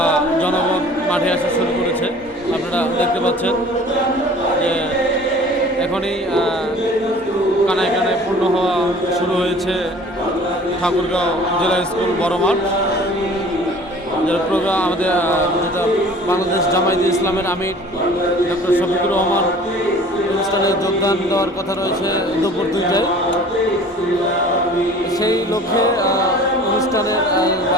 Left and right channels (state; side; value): normal; both; correlation 0.47